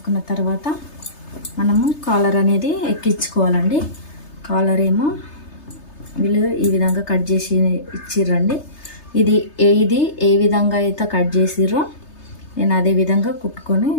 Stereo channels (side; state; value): right; late; 3.3 ms